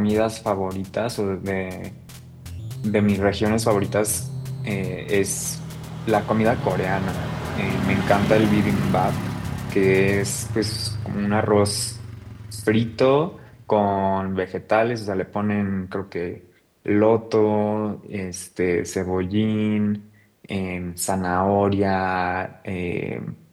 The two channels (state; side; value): identical; both; correlation 1.00